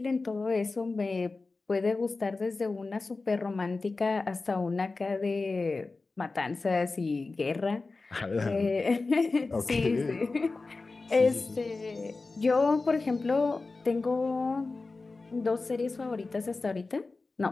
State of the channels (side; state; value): right; quieter; 3.7 dB